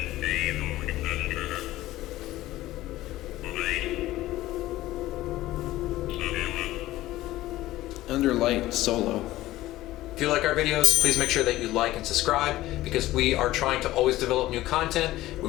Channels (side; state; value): right; quieter; 16.2 dB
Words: Under light solo. If you like our videos, please make sure that you like and subscribe, because we are trying to always develop new content. We